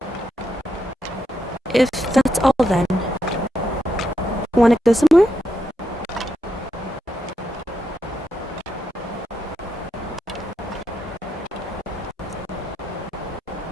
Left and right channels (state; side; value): normal; both; correlation 0.82